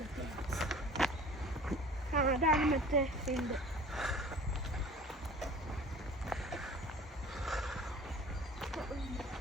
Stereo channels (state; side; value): normal; both; correlation 0.44